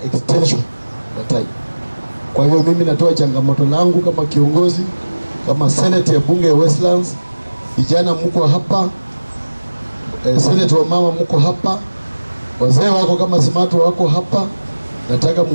extension ya time. Kwa hiyo mimi natoa changamoto langu kama kiongozi, kama Senate ya bunge ya Westlands, vijana mko hapa, Senate wa mama mko hapa, wazee wako kama Smart wako hapa, nataka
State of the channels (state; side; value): inverted; both; correlation -1.00